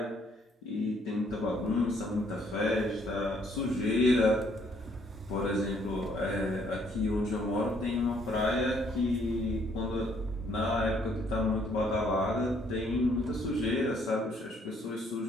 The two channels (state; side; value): normal; both; correlation 0.66